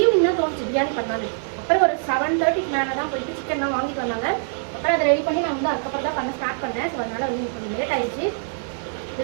தான் தோணுச்சு பிரியாணி பண்ணான்னு. அப்புறம் ஒரு 7:30க்கு மேலே தான் போயிட்டு சிக்கன்லாம் வாங்கிட்டு வந்தாங்க. அப்புறம் அதை ரெடி பண்ணி நான் வந்து அதுக்கப்புறம் தான் பண்ண ஸ்டார்ட் பண்ணேன். ஸோ அதனால் வந்து கொஞ்சம் லேட் ஆகிடுச்சு.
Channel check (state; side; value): silent; left; digital silence